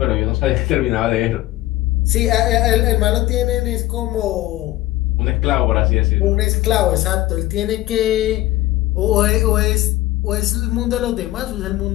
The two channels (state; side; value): quieter; right; 16.3 dB